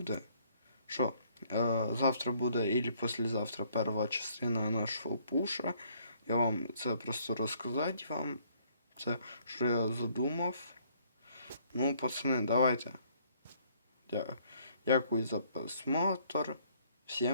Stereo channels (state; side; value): inverted; both; correlation -0.64